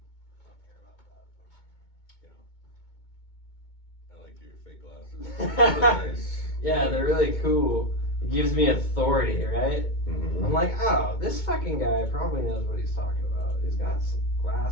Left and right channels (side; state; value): right; late; 2.2 ms